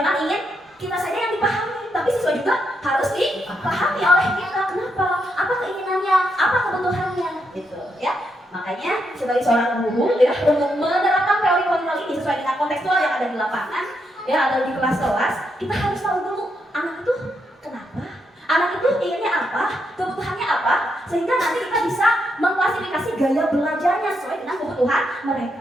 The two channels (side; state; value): both; normal; correlation 0.80